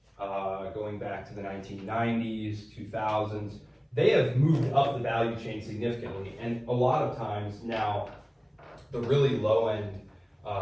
going back to the 1990s, 2000s. They have moved up the value chain significantly, and a lot of times now, the really low-end,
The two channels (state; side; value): identical; both; correlation 1.00